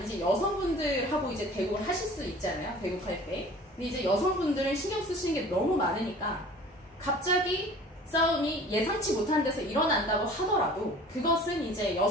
이제 여성분들하고 이제 대국을 하실 수 있잖아요. 대국할 때. 근데 이제 여성분들은 신경 쓰시는 게 너무 많으니까 갑자기 싸움이 예상치 못한 데서 일어난다고 하더라도 그것은 이제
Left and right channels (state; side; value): normal; both; correlation 0.45